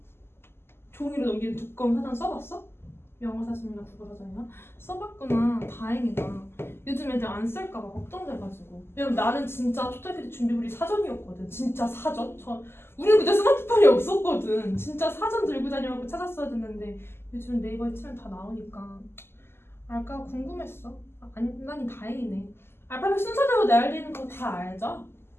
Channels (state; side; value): late; right; 0.12 ms